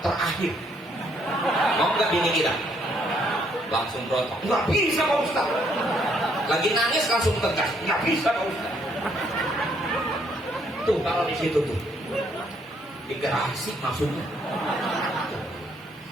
terakhir. Mau nggak bini kita? Langsung berontak, nggak bisa Pak Ustaz. Lagi nangis langsung tegas, nggak bisa Pak Ustaz. Tuh kalau di situ tuh digerasi maksudnya.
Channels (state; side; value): normal; both; correlation 0.69